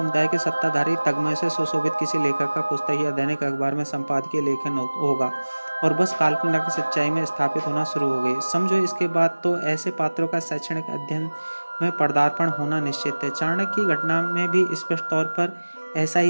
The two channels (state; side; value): inverted; both; correlation -1.00